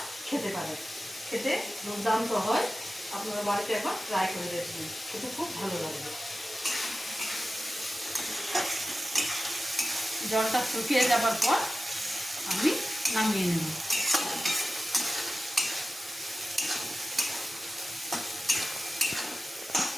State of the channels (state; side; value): normal; both; correlation 0.94